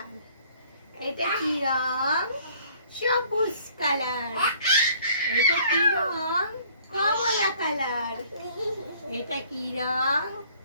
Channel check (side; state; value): both; inverted; correlation -0.57